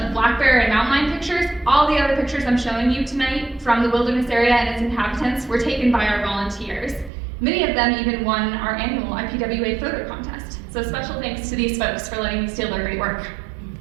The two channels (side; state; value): left; drops out; at 7.1 s